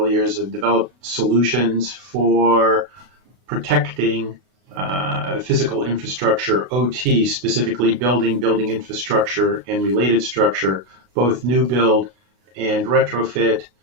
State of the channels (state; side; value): late; left; 32 ms